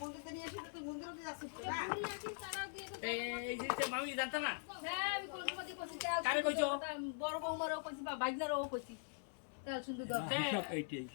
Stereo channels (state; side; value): silent; right; digital silence